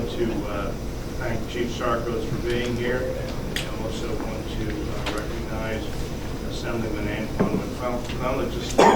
to thank Chief Sarkos for being here. I also want to recognize Assemblyman Antoine McClellan, just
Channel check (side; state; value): both; identical; correlation 1.00